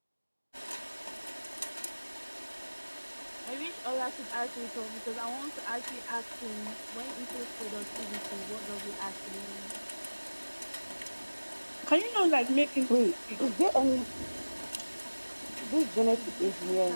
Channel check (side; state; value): both; inverted; correlation -1.00